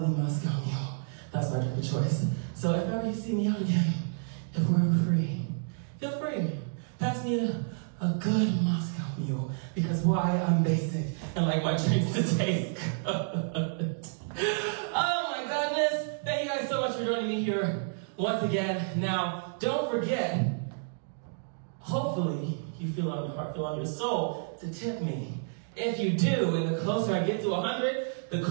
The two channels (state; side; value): silent; left; digital silence